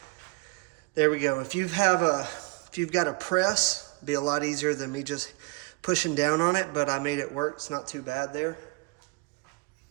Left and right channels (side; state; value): left; quieter; 26.1 dB